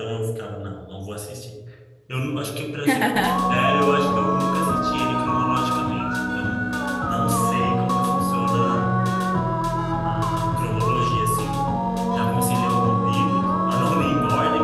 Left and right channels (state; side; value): identical; both; correlation 1.00